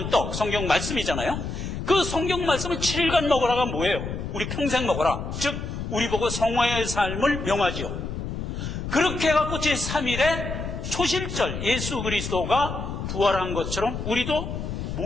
떡, 성경 말씀이잖아요. 그 성경 말씀을 7일간 먹으라가 뭐예요? 우리 평생 먹어라. 즉 우리 보고 성화의 삶을 명하지요. 그렇게 해갖고 제3일에 초실절, 예수 그리스도가 부활한 것처럼 우리도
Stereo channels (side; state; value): left; noise; rumble, 5 dB below the sound